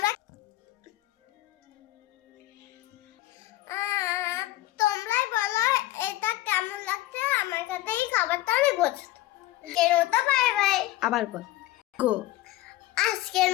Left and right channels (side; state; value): right; quieter; 16.4 dB